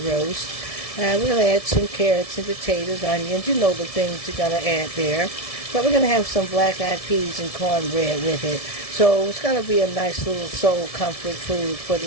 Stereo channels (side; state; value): right; late; 1.7 ms